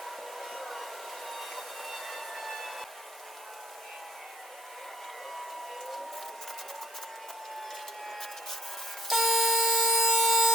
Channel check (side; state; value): both; normal; correlation 0.59